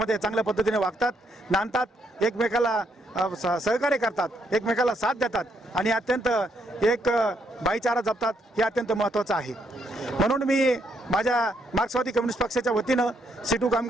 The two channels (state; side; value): normal; both; correlation 0.74